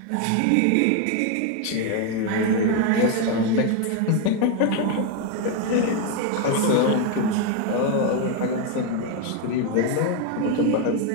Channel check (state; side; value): different; both; correlation 0.01